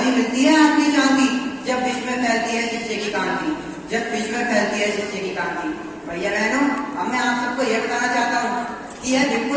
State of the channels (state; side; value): identical; both; correlation 1.00